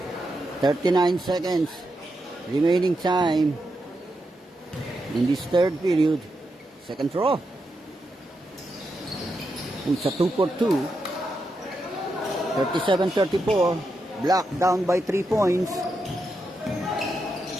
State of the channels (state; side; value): normal; both; correlation 0.85